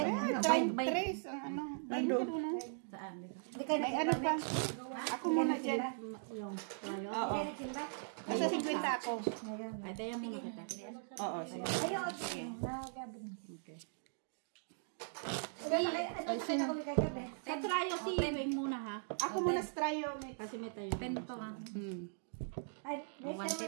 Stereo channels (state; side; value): silent; left; digital silence